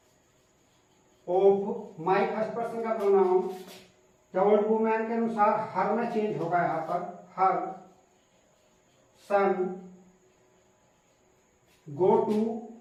of my first person का प्रोनाउन द ओल्ड वुमन के अनुसार हर में चेंज होगा, यहाँ पर हर सन गो टू,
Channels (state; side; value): identical; both; correlation 1.00